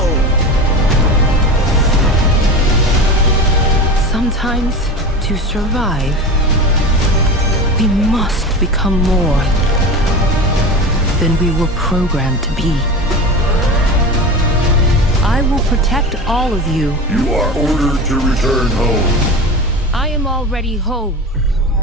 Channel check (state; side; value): normal; both; correlation 0.29